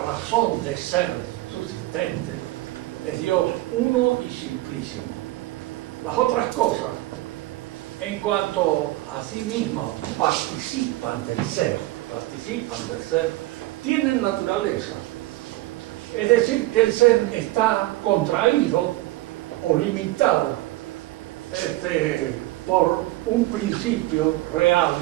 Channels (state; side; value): quieter; left; 18.0 dB